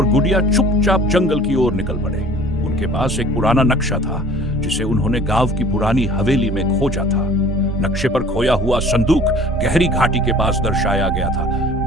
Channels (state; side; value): normal; both; correlation 0.49